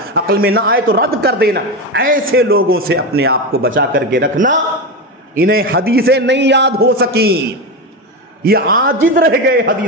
عقل میں نہ آئے تو رد کر دینا، ایسے لوگوں سے اپنے آپ کو بچا کر کے رکھنا۔ انہیں حدیثیں نہیں یاد ہو سکیں، یہ عاجز رہ گئے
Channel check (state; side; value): normal; both; correlation 0.17